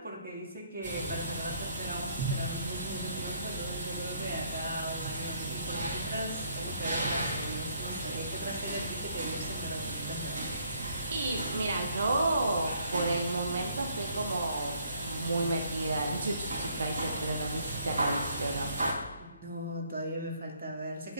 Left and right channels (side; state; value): both; inverted; correlation -0.66